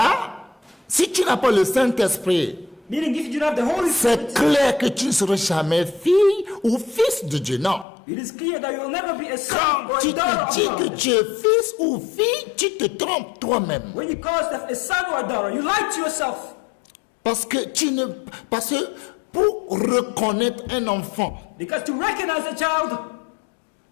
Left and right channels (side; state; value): right; drops out; at 7.9 s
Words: si tu n'as pas le Saint-Esprit, Meaning if you don't have the Holy c'est Spirit, clair que tu ne seras jamais fille ou fils de Dieu. Non. it is clear that you will never be a son Quand or tu a daughter te dis of que God. tu es fils ou fille, tu te trompes toi-même. When you call yourself a son or a daughter, you lie to yourself. Parce que pour reconnaître un enfant, Because to recognize a child,